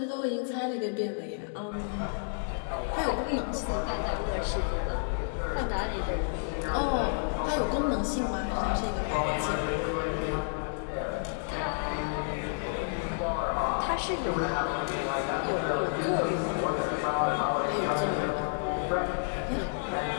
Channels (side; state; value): right; silent; digital silence